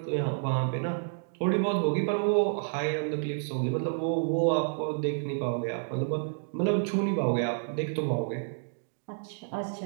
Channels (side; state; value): left; silent; digital silence